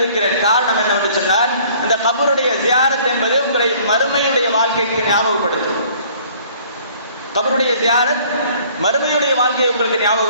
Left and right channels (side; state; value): both; inverted; correlation -0.55